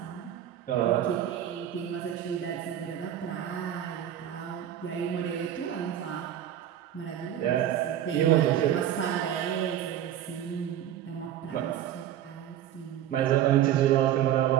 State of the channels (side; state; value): left; quieter; 11.0 dB